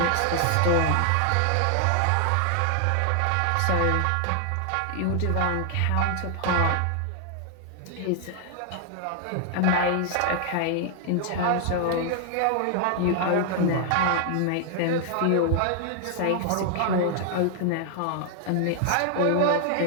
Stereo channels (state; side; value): different; both; correlation 0.00